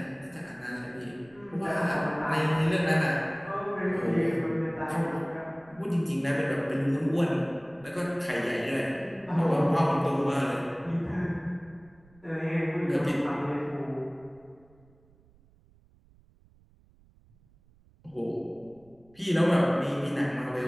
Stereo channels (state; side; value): noise; right; rumble, 29 dB below the sound